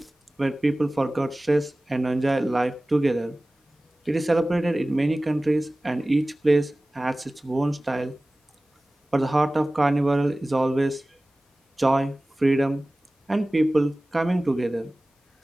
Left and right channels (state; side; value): normal; both; correlation 0.98